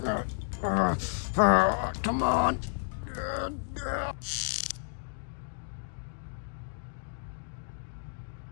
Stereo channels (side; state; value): right; silent; digital silence